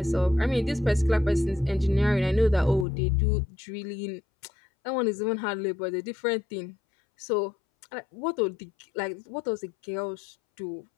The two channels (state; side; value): drops out; right; at 2.9 s